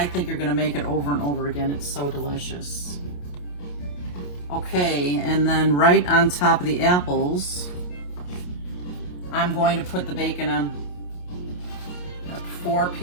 think you're gonna make it over and over again. It's so delicious. Okay, and then right on top of the apples, I'm going to put the bacon on. Got 4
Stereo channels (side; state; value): right; late; 28 ms